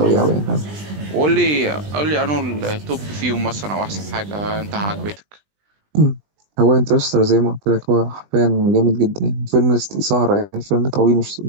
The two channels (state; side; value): late; left; 20 ms